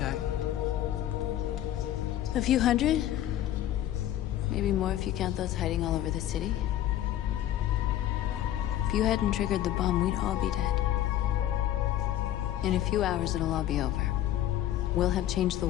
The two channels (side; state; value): right; quieter; 12.5 dB